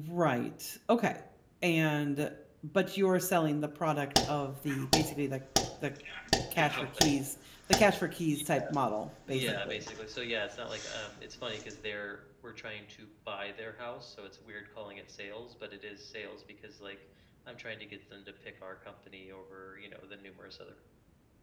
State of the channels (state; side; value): identical; both; correlation 1.00